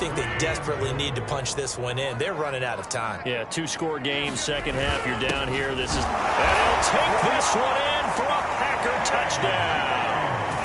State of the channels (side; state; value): both; identical; correlation 1.00